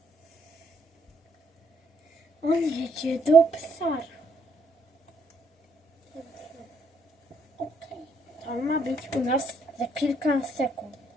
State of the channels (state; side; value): normal; both; correlation 0.70